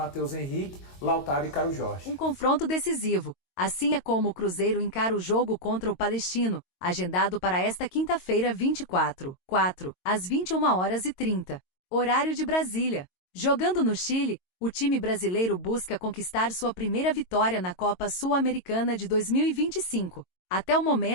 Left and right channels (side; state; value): right; late; 22 ms